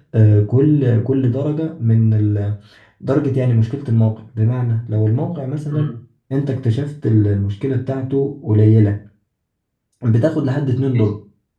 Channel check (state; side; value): identical; both; correlation 1.00